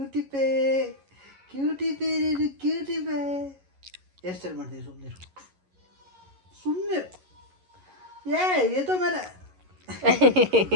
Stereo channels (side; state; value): left; late; 11 ms